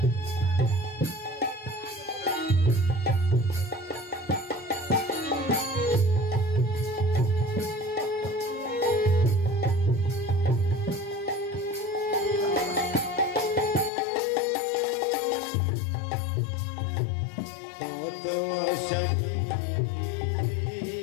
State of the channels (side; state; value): right; drops out; at 13.9 s